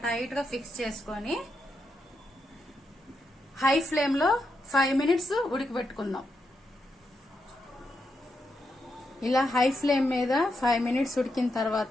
టైట్ గా ఫిక్స్ చేసుకొని హై ఫ్లేమ్ లో 5 మినిట్స్ ఉడికిపెట్టుకుందాం. ఇలా హై ఫ్లేమ్ మీద 5 మినిట్స్ ఉడికిన తర్వాత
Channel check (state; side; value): normal; both; correlation 0.83